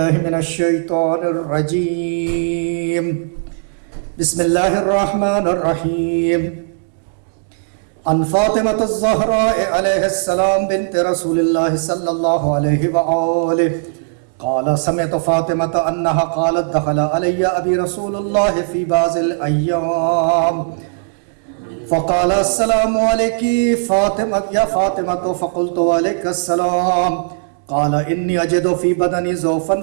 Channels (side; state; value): left; silent; digital silence